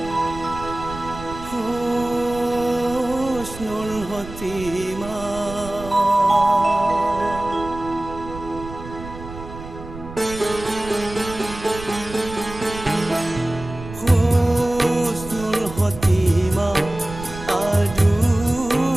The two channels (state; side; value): noise; right; rumble, 13 dB below the sound